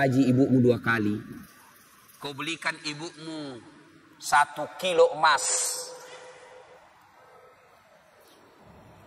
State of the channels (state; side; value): identical; both; correlation 1.00